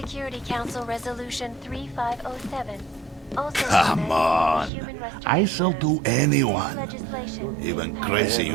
Council Resolution 3507. Also Come on. human I shall do anyone, legislation even crazy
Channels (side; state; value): left; drops out; at 4.7 s